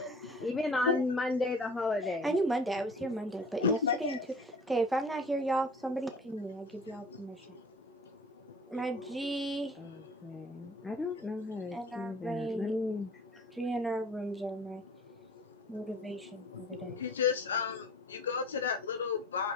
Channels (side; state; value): both; normal; correlation 0.45